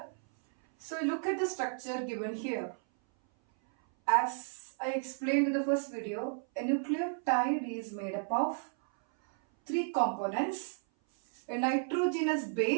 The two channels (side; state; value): left; silent; 56 dB below the other